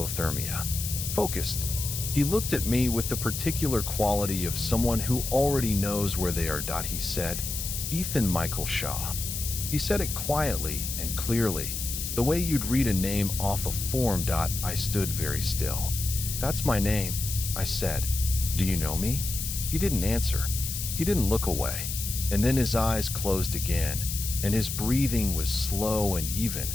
Focused. He looked at me with the particular quality of someone who already knows where they are. He said, "Ethan Michael Shaw." He said it quietly and clearly, the way you'd read a name off a form. I stood very still. "That's my name," I said. "Do you know me?" He didn't answer. He didn't look away. And then his eyes closed again, and his breathing was slow and even,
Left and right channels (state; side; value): noise; left; hiss, 5 dB below the sound